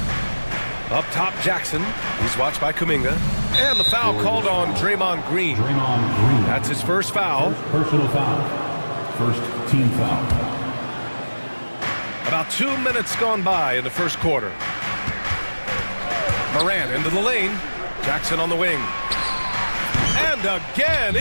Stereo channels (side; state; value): both; inverted; correlation -1.00